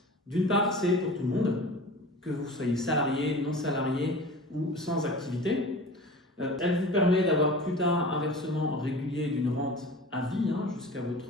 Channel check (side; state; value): both; normal; correlation 0.38